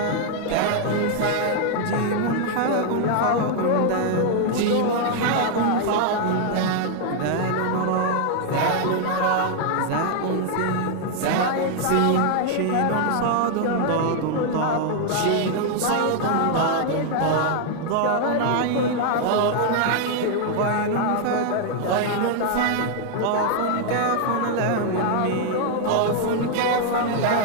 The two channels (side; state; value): both; different; correlation 0.00